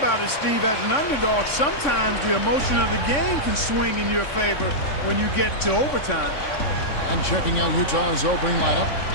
it, Steve, as an underdog, sometimes the emotion of the game can swing in your favor when you get to overtime. And checking out Utah's opening lineup,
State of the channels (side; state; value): right; late; 3.6 ms